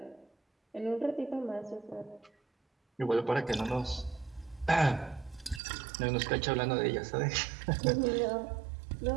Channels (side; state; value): left; drops out; at 5.6 s